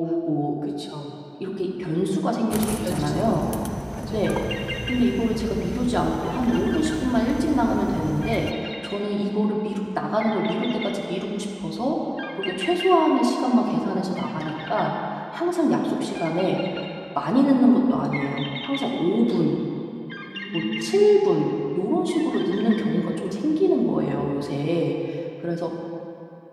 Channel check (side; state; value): both; identical; correlation 1.00